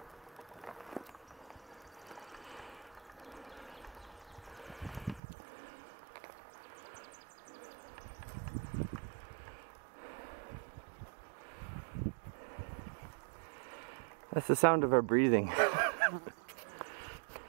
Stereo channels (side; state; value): left; drops out; at 5.2 s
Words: That's the sound of our breathing.